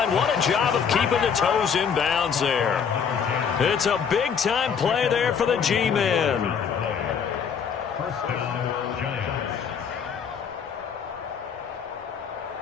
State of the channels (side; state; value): right; quieter; 6.9 dB